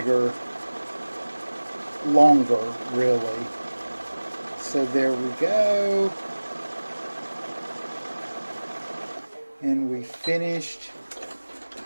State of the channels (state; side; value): inverted; both; correlation -1.00